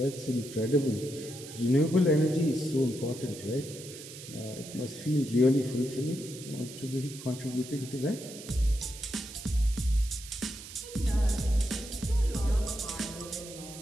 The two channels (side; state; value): right; noise; hiss, 14 dB below the sound